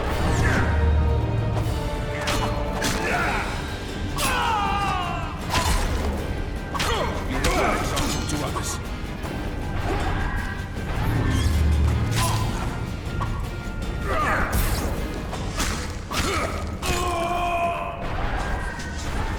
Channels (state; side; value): identical; both; correlation 1.00